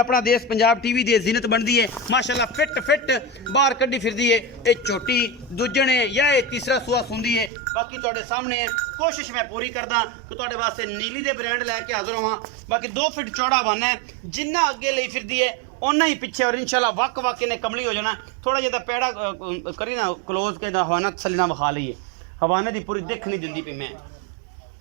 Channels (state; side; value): drops out; left; at 7.5 s